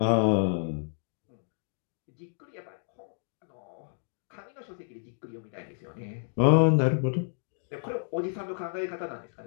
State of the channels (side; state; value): right; silent; digital silence